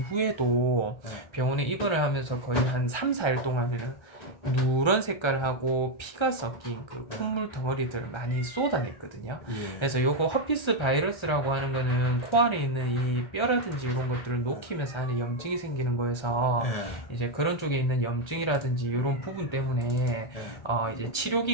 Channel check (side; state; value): right; late; 1.3 ms